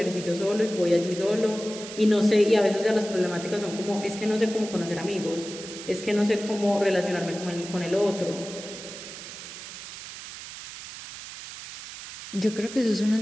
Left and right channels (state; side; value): noise; right; hiss, 12 dB below the sound